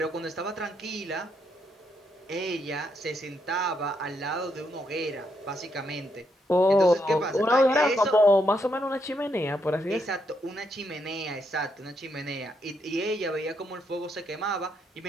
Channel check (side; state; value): both; normal; correlation 0.78